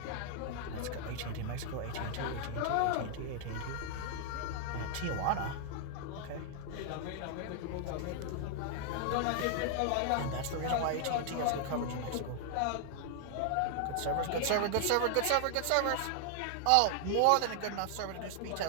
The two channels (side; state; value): both; different; correlation 0.00